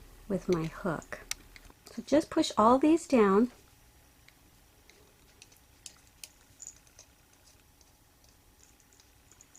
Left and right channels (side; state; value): both; identical; correlation 1.00